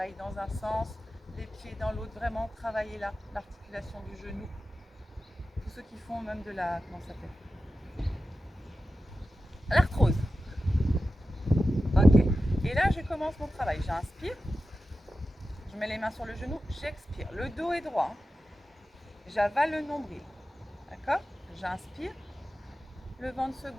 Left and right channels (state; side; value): normal; both; correlation 0.93